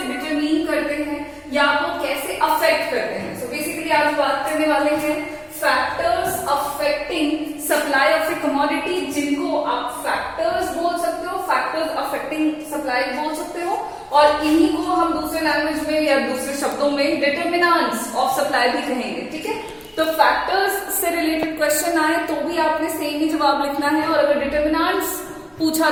डिटरमिन करते हैं या वो कैसे अफेक्ट करते हैं। सो बेसिकली आज बात करने वाले हैं factors affecting supply of A commodity, जिनको आप फैक्टर्स बोल सकते हो, फैक्टर्स अफेक्टिंग सप्लाई बोल सकते हो, और इन्हीं को हम दूसरे लैंग्वेज में या दूसरे शब्दों में डिटरमिनेंट्स ऑफ सप्लाई भी कहेंगे। ठीक है, तो फैक्टर्स से रिलेटेड क्वेश्चन आए तो भी आपने सेम ही जवाब लिखना है, और अगर डिटरमिनेंट्स पूछा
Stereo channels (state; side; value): identical; both; correlation 1.00